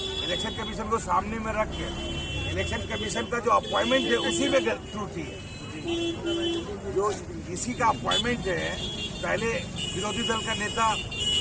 इलेक्शन कमीशन को सामने में रख के इलेक्शन कमीशन का जो अपॉइंटमेंट है उसी में त्रुटि है। जो इसी का अपॉइंटमेंट है, पहले विरोधी दल का नेता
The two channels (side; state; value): both; identical; correlation 1.00